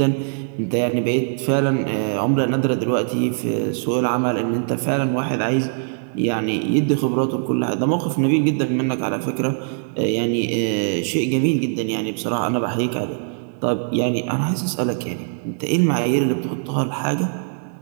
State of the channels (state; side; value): silent; left; digital silence